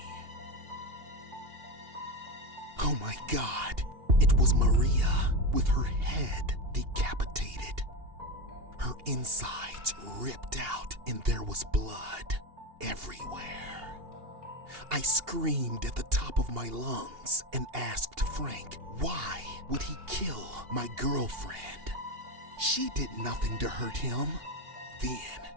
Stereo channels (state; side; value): late; left; 2.8 ms